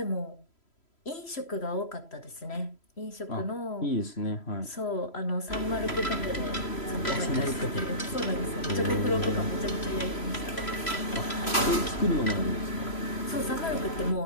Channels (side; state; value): right; late; 3.0 ms